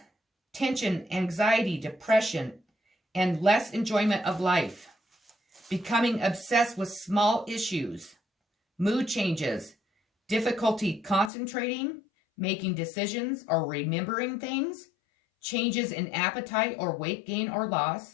tension, anxiety, depression, and less enjoyment of life, becoming obsessed with small issues, mood changes, difficulty concentrating, making decisions or remembering things, changes in appetite or weight gain or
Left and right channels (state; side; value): drops out; right; at 11.3 s